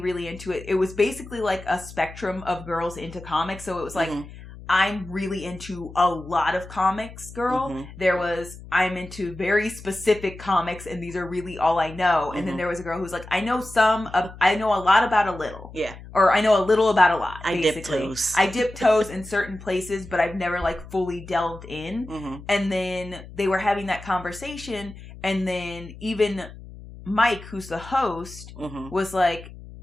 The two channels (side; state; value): left; noise; hum, 16 dB below the sound